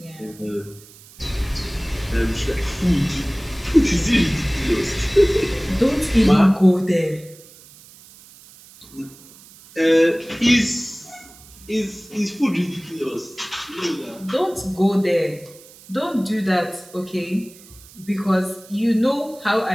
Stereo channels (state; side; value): noise; right; hiss, 22 dB below the sound